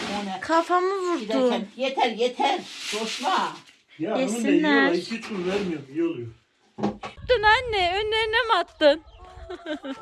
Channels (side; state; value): both; identical; correlation 1.00